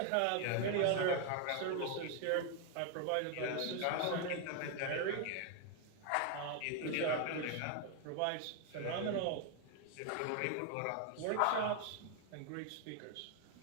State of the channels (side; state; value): both; different; correlation 0.01